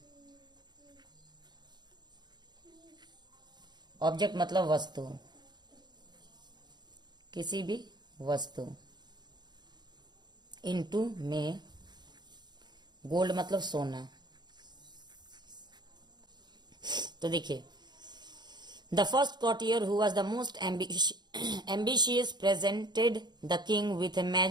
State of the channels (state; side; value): late; left; 0.21 ms